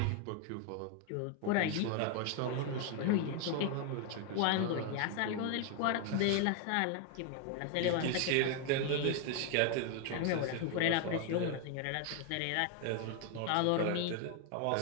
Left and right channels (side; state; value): both; different; correlation 0.01